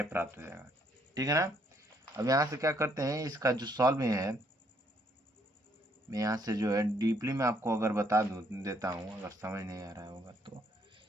प्राप्त हो जाएगा। ठीक है ना, अब यहाँ से क्या करते हैं, इसका जो सॉल्व है मैं यहाँ से जो है डीपली में आपको अगर बता देता हूँ, अगर समझ नहीं आ रहा होगा तो,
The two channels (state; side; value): normal; both; correlation 0.69